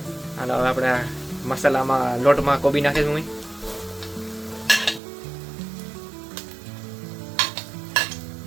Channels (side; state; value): left; drops out; at 5.0 s